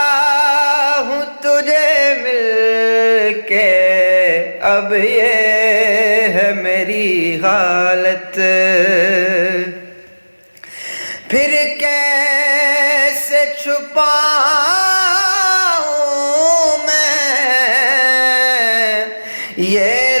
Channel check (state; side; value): inverted; both; correlation -1.00